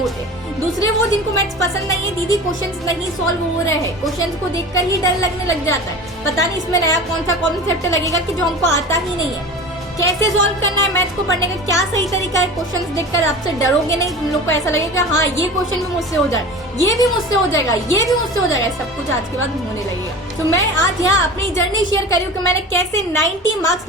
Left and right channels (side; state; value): both; normal; correlation 0.35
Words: होते हैं। दूसरे वो जिनको मैथ्स पसंद नहीं है, दीदी क्वेश्चंस नहीं सॉल्व हो रहे हैं, क्वेश्चंस को देखकर ही डर लगने लग जाता है, पता नहीं इसमें नया कौन सा कॉन्सेप्ट लगेगा कि जो हमको आता ही नहीं है, कैसे सॉल्व करना है मैथ्स को पढ़ने का, क्या सही तरीका है। क्वेश्चंस देखकर आपसे डरोगे नहीं, तुम लोग को ऐसा लगेगा हाँ ये क्वेश्चन भी मुझसे हो जाए, ये भी मुझसे हो जाएगा, ये भी मुझसे हो जाएगा, सब कुछ आज के बाद होने लगेगा। तो मैं आज यहाँ अपनी जर्नी शेयर कर रही हूँ कि मैंने कैसे 90 मार्क्स